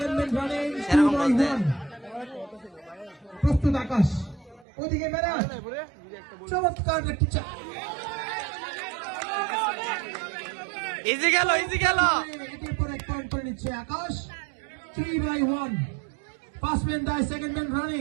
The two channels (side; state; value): left; drops out; at 4.7 s